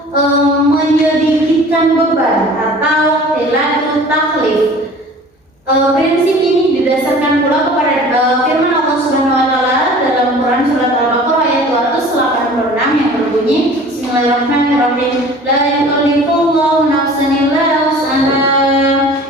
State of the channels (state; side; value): normal; both; correlation 0.45